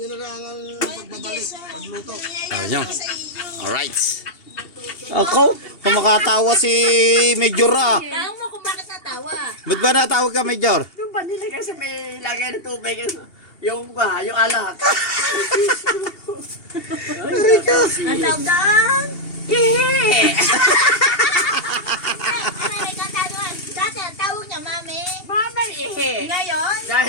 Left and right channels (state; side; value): late; right; 2.8 ms